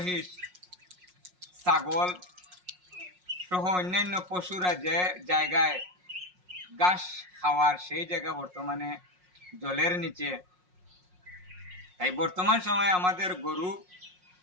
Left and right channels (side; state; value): left; late; 5.5 ms